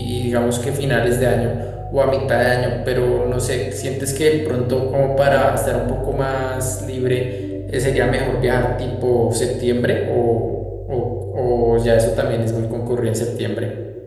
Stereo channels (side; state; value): both; identical; correlation 1.00